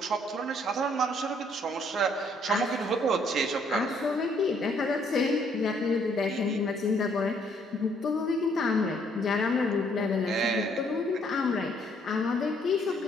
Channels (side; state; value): both; normal; correlation 0.66